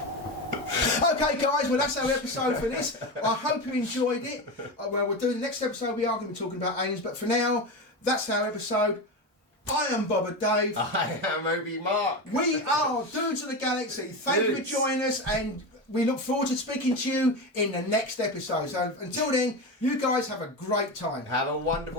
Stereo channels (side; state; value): both; normal; correlation 0.20